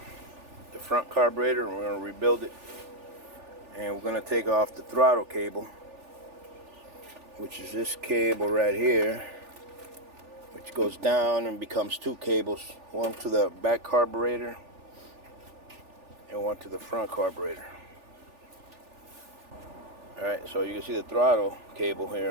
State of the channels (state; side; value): late; left; 3.4 ms